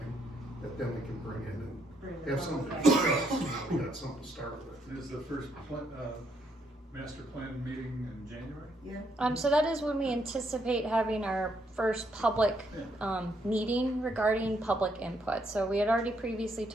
that then we can bring in and have something to discuss. We got something to start with. Is the first master plan meeting in January? Yeah. So that is when we anticipate having our first public meeting regarding public input. So we had already previously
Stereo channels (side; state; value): both; normal; correlation 0.74